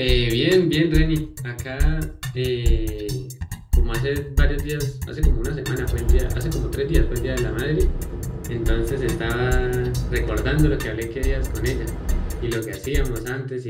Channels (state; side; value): identical; both; correlation 1.00